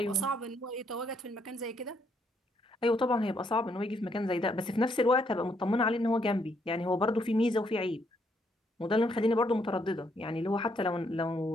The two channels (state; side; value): normal; both; correlation 0.73